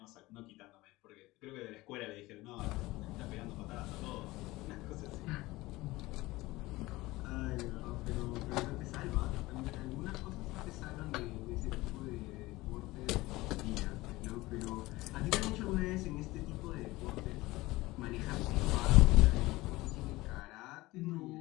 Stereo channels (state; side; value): quieter; right; 19.7 dB